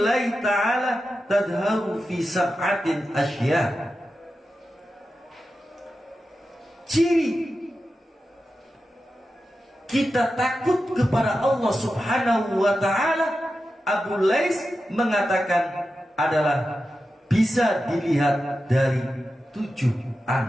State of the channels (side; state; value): both; normal; correlation 0.91